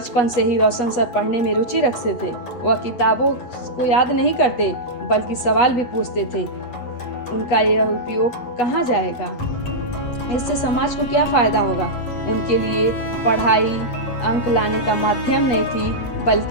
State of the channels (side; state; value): right; late; 8.3 ms